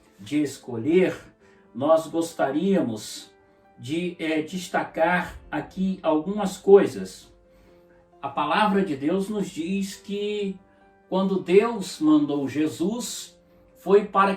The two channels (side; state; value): both; identical; correlation 1.00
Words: de escolher, nós gostaríamos de destacar aqui algumas coisas. A palavra de Deus nos diz que quando Deus mandou Jesus, foi para